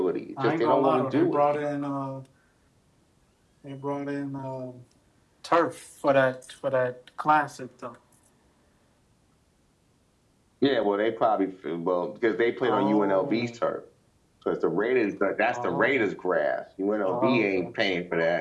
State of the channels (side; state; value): both; identical; correlation 1.00